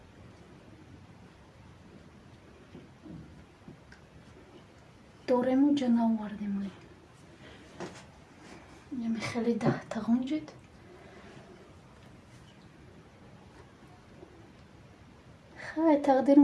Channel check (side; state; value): both; identical; correlation 1.00